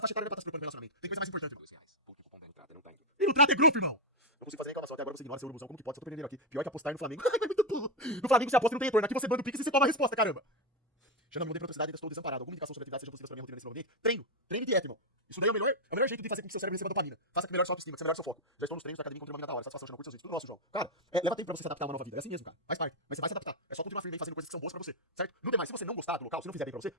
faixa etária não é pra estar se preocupando com relacionamento. Tem coisa mais importante. R$2. Porque o cupom da entrada não tá indo. E no trato é grupo, irmão. Não consigo fazer reclamação até agora, você ignora seu urubuzão. Como que pode? Só tô perdendo aqui. Pior que apostar no Flamengo. É muito burro. No Flamengo você aposta e não tem retorno. Aqui você manda o Pix e você toma a resposta, caramba. Xandão, não tem praticidade, ainda estou desamparado. Alguma indicação sobre atividade seja possível para minha rotina nesse novo ambiente? Treino. Treino e dieta, irmão. Isso daí é o melhor jeito de fazer com que seu cérebro receba dopamina. Faça que melhore sua autoestima, que você melhore seu foco. Já estou nos treinos da academia, encontrei uma mina da hora. Satisfação, chama curso seus vídeos. Tudo nosso, João. Cara, leva tempo pra você se adaptar a uma nova vida. É assim mesmo, cara. Faz parte. Mas você vai se adaptar. É só continuar firme aí fazendo coisas que são boas pra você, certo? Não tem mais. Se você não gostar do local, se não fizer bem pra você,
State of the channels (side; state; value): both; normal; correlation 0.04